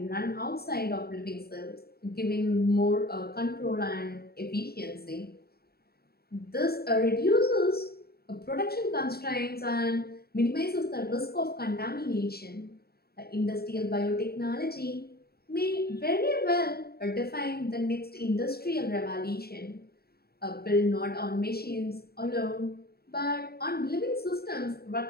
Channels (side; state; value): right; late; 0.45 ms